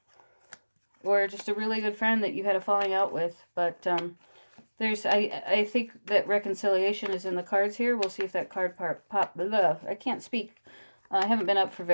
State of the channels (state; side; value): inverted; both; correlation -1.00